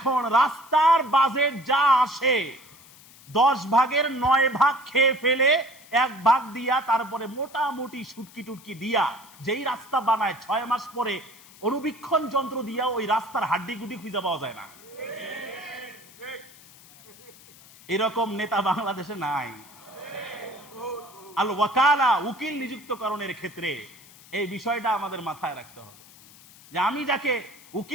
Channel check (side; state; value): left; noise; hiss, 22 dB below the sound